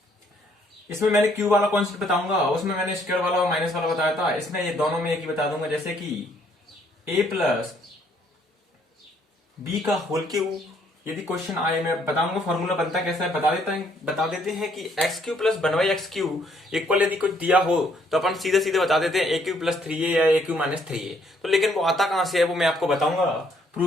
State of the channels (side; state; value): both; normal; correlation 0.67